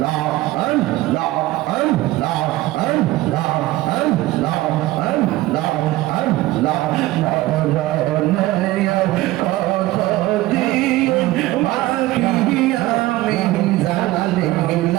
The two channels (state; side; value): quieter; left; 17.5 dB